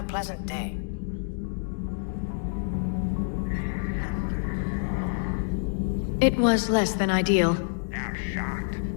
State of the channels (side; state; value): right; silent; digital silence